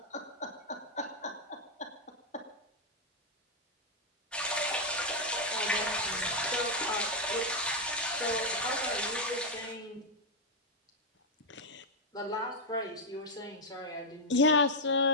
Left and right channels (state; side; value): normal; both; correlation -0.01